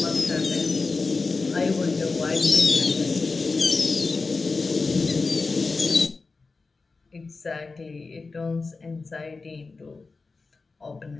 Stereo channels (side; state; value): right; quieter; 4.0 dB